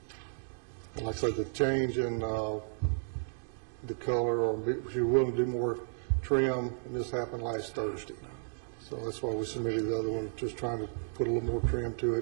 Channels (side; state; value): left; silent; digital silence